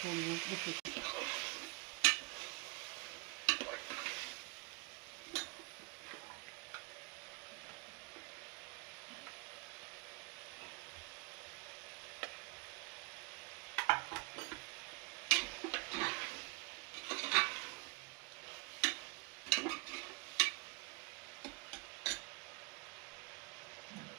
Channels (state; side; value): quieter; left; 29.7 dB